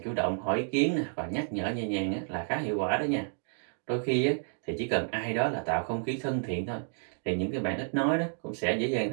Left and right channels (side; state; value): left; silent; 57 dB below the other